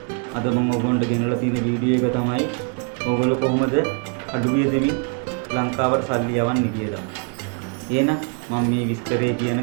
අද මම ඔයගොල්ලන්ට ගෙනලා තියෙන වීඩියෝ එක තමයි ඔයගොල්ලෝ කොහොමද අඩුවිය දෙමින් ලංකාවට සල්ලි යවන්නේ කියලා. එහෙනම් මම මේ විස්තරේ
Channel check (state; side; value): quieter; left; 38.2 dB